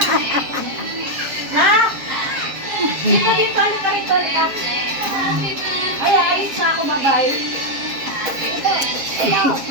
Ha? Dito, dito, halika rito, halika. Ay, ayos na ako, bye-bye. Ito.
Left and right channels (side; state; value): left; late; 7.4 ms